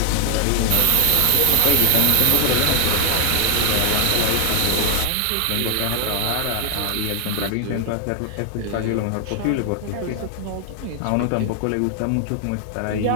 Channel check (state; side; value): different; both; correlation 0.00